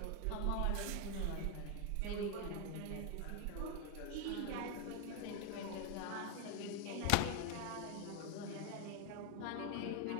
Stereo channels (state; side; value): different; both; correlation 0.01